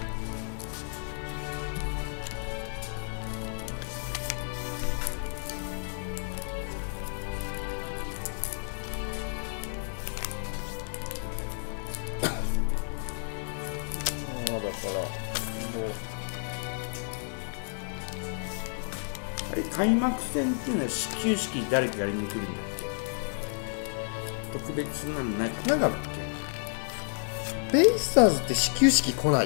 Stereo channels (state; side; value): silent; right; digital silence